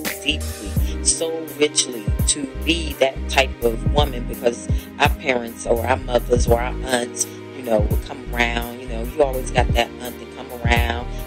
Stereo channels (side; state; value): both; identical; correlation 1.00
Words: deeply, so richly to be that type of woman, because our parents or our mothers or our aunts, would come around. You always got that aunt that come around,